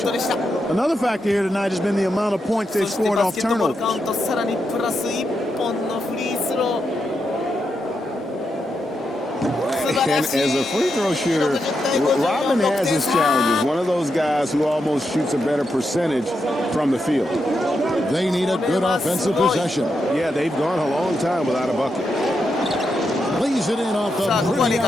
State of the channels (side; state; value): both; normal; correlation 0.84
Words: Another factor here tonight has been the amount of points they've scored off turnovers. And as a free throw shooter, Rodman has his challenges. One of those guys who almost shoots a better percentage from the field. They need a good offensive possession. Yeah, they've gone a long time without a bucket. Lays it in off the pretty